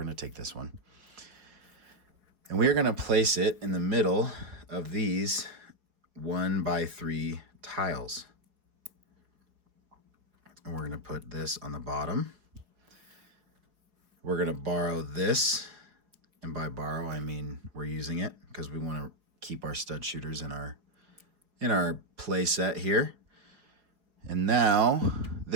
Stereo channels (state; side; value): late; left; 4.8 ms